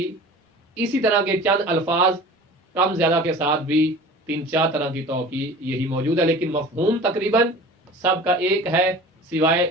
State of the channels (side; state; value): both; normal; correlation 0.41